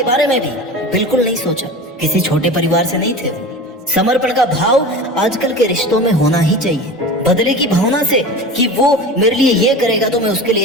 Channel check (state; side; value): normal; both; correlation 0.33